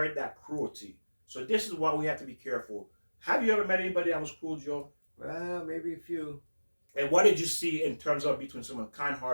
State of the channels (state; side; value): inverted; both; correlation -1.00